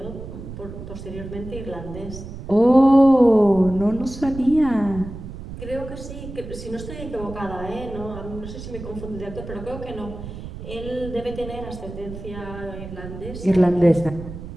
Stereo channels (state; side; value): noise; right; rumble, 11 dB below the sound